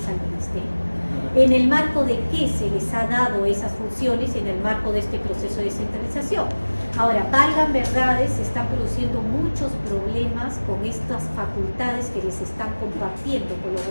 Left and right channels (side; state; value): both; inverted; correlation -1.00